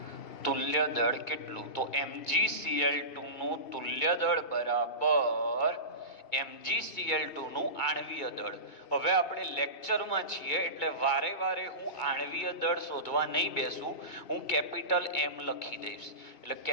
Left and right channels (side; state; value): right; late; 2.2 ms